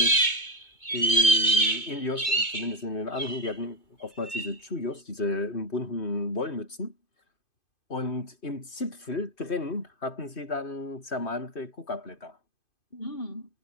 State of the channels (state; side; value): late; right; 2.2 ms